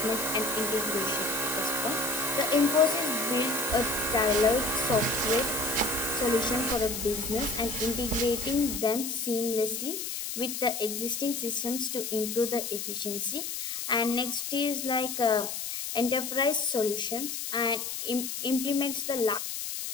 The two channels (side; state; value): left; noise; hiss, 5 dB below the sound